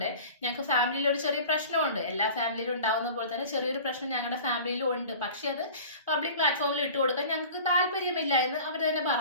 ഞങ്ങൾക്ക് ഫാമിലിയിൽ ഒരു ചെറിയ പ്രശ്നമുണ്ട്, എല്ലാ ഫാമിലിയിലും ഉണ്ടാവുന്ന പോലെ തന്നെ ചെറിയൊരു പ്രശ്നം ഞങ്ങളുടെ ഫാമിലിയിലും ഉണ്ട്, പക്ഷെ അത് പബ്ലിക് പ്ലാറ്റ്ഫോമിൽ ഇട്ട് കൊടുക്കാൻ ഞങ്ങൾക്ക് താല്പര്യമില്ല എന്ന് അവർ തന്നെ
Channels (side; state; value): both; inverted; correlation -0.40